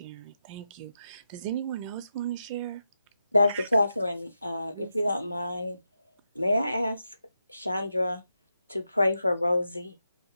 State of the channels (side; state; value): both; inverted; correlation -0.88